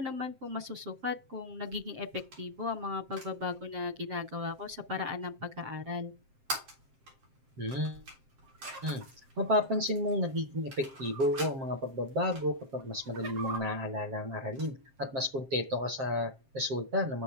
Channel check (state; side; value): late; left; 7.6 ms